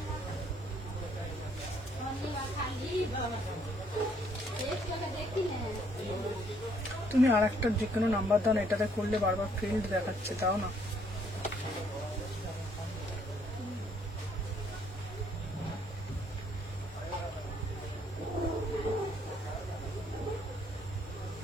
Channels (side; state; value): both; normal; correlation 0.67